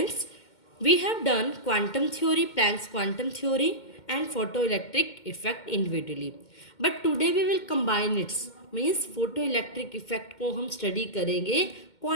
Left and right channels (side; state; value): right; late; 2.1 ms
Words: we have done quantum theory, Planck's quantum theory and photoelectric effect individually. But today we will combine its means photo electric effect को हम study करेंगे